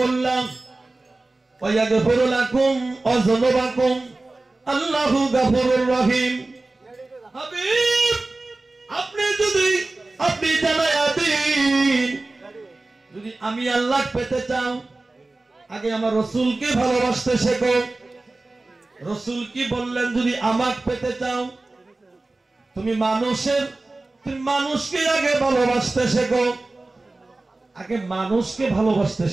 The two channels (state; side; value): quieter; left; 3.1 dB